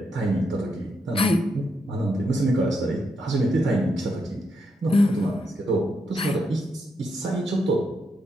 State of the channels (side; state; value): both; normal; correlation 0.81